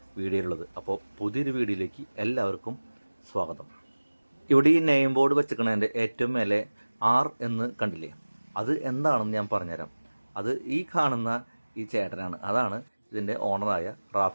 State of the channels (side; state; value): both; inverted; correlation -1.00